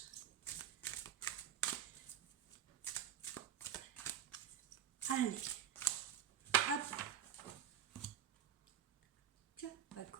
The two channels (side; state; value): left; quieter; 9.6 dB